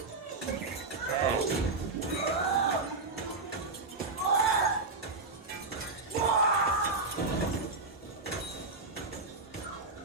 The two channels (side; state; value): left; quieter; 3.7 dB